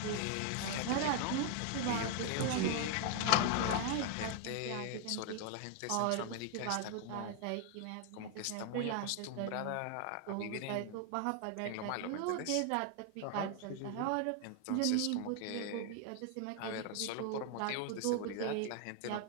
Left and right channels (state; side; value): different; both; correlation 0.00